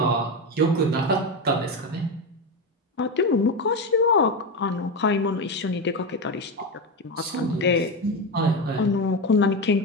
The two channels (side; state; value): both; normal; correlation 0.15